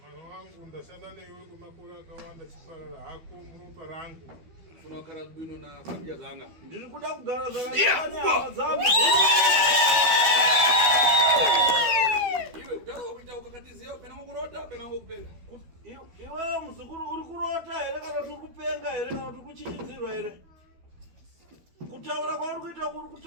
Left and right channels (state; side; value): late; left; 12 ms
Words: wangu ndashanda newe kwemakore akawanda chiparara hako muropa rangu funa kugara bwino na familia zanga ndiri kuda kugara zvakanaka dzangu iwe kutaura kuita ukakatiziya pena ngokurota pena ngokupenga iwe muzukuru uri kurota here kana kuti uri kupenga here kana kuti uri kuchichidzirwa here kutaura kwauri kuita kuri